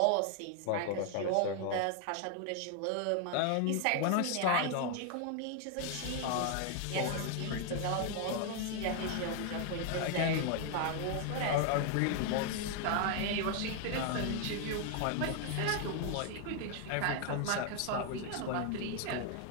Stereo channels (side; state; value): both; different; correlation 0.00